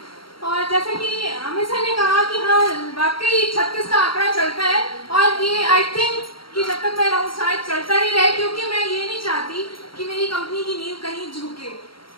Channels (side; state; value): right; late; 0.74 ms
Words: और जैसा कि अमित सर ने कहा कि हाँ वाकई 36 का आंकड़ा चलता है, और ये आई थिंक कि जब तक मैं रहूँ शायद चलता ही रहे, क्योंकि मैं ये नहीं चाहती कि मेरी कंपनी की नींव कहीं झुके।